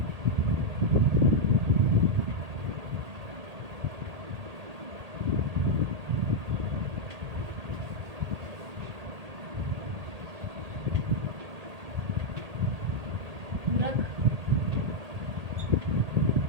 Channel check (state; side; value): late; left; 1.8 ms